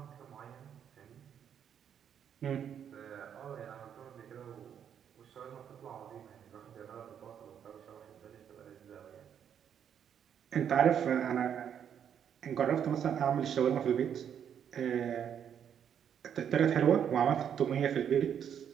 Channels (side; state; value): left; quieter; 8.6 dB